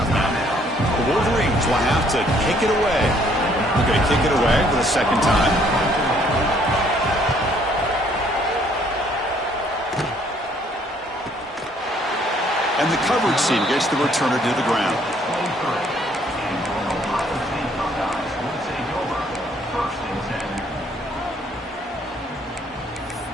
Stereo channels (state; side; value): normal; both; correlation 0.64